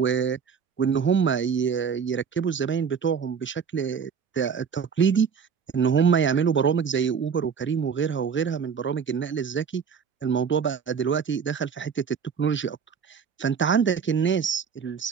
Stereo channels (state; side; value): quieter; left; 6.6 dB